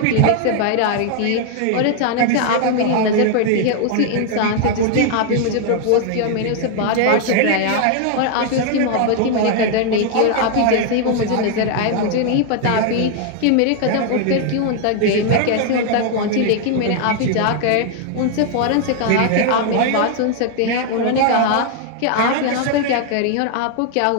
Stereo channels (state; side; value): different; both; correlation 0.00